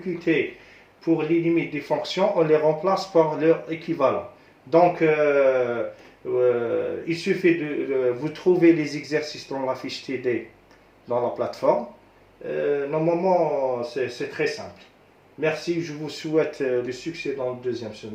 pour les limites des fonctions, on les remplace par leur équivalent. Donc, il suffit de vous trouver les exercices dans la fiche TD dans la plateforme. Normalement, c'est très simple. Merci, je vous souhaite du succès dans le deuxième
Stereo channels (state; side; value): identical; both; correlation 1.00